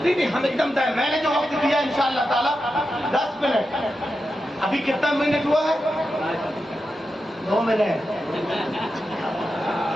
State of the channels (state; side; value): normal; both; correlation 0.89